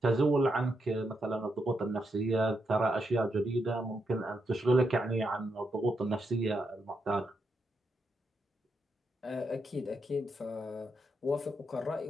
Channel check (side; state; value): both; normal; correlation 0.82